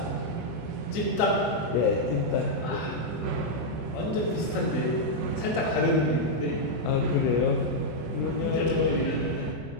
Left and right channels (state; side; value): late; right; 24 ms